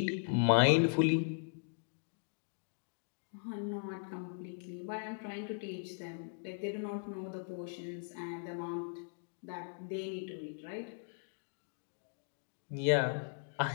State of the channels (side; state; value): right; silent; digital silence